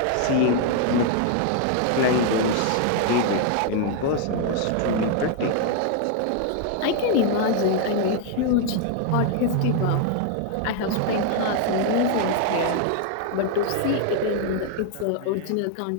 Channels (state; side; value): different; both; correlation 0.00